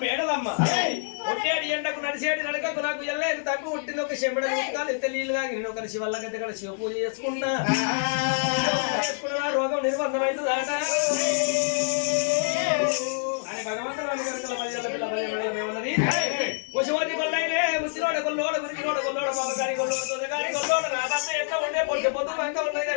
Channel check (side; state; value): right; silent; 61 dB below the other